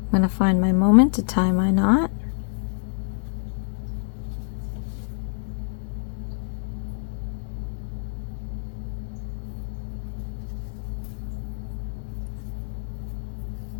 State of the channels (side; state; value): right; silent; digital silence